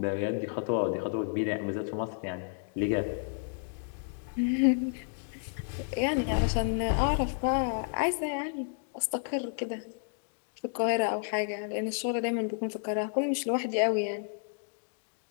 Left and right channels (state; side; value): silent; right; digital silence